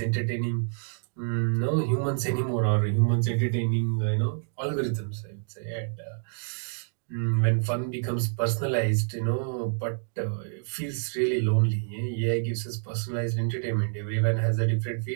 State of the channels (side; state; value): left; silent; digital silence